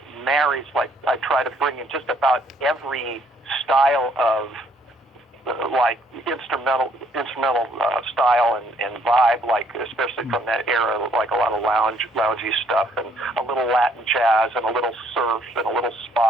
marries. Like I try to bring in just about every style of like instrumental style and vibe, like especially from that era, like a lot of loungy stuff and a little Latin jazz and a little surf and a little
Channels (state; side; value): normal; both; correlation 0.66